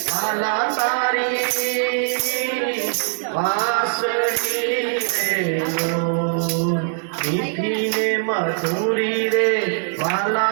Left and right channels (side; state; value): left; silent; digital silence